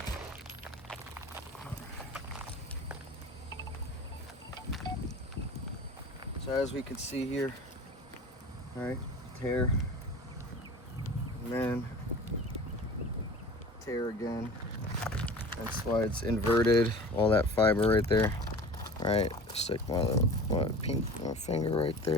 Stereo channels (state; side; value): normal; both; correlation 0.39